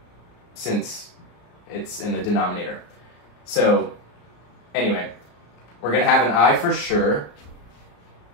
since it's in the denominator. So anyway, we're going to have an I for sure,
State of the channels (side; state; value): right; late; 34 ms